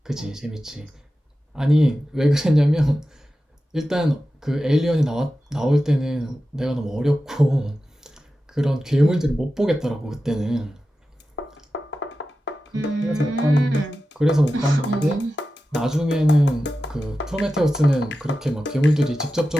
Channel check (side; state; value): both; normal; correlation 0.93